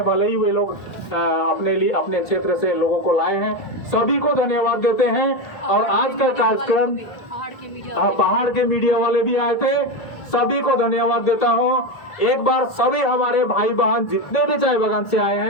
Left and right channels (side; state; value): right; late; 1.8 ms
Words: भले ही वे लोग अपने लिए अपने क्षेत्र से लोगों को लाए हैं, सभी को धन्यवाद देते हैं। और आज का कार्यक्रम पहाड़ के मीडिया वाले भी आए थे, सभी को धन्यवाद देता हूं। एक बार सभी हमारे भाई बहन जितने भी चाय बागान से आए